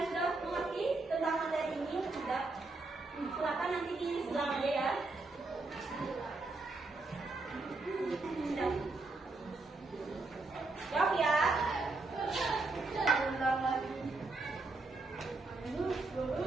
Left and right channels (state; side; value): quieter; left; 3.4 dB